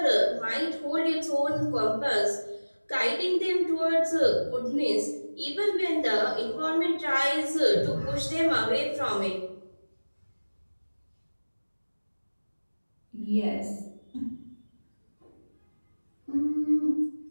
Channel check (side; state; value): both; inverted; correlation -1.00